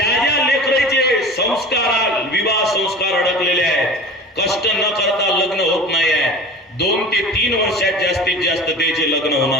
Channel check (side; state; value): both; normal; correlation 0.36